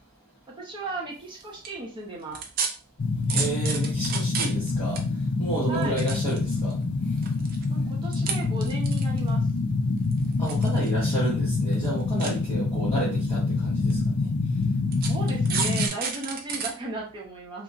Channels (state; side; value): normal; both; correlation 0.65